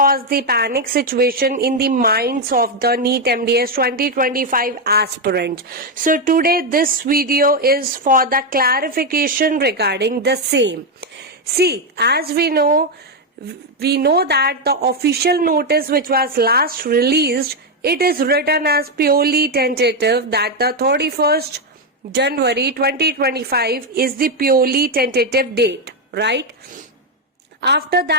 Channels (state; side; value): normal; both; correlation 0.04